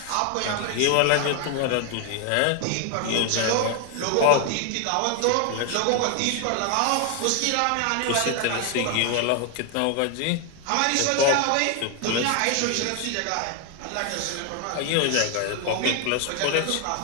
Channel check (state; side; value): different; both; correlation 0.01